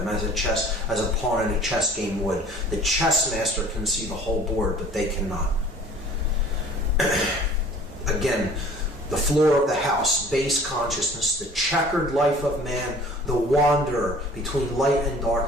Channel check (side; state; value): both; normal; correlation 0.49